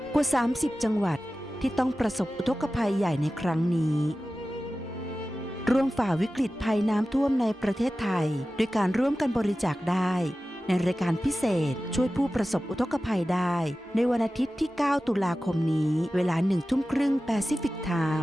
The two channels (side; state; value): both; normal; correlation 0.95